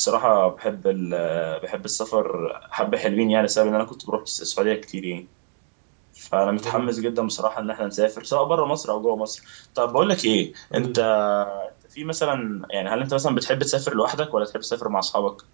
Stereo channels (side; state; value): left; silent; digital silence